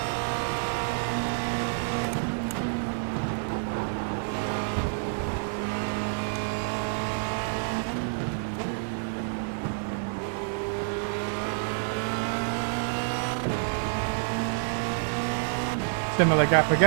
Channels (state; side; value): silent; left; 58 dB below the other